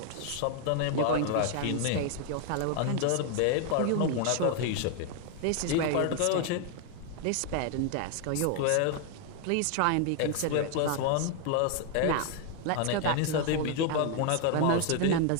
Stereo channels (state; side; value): different; both; correlation 0.00